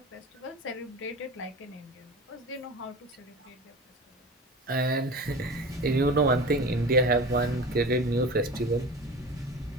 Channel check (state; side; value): normal; both; correlation 0.34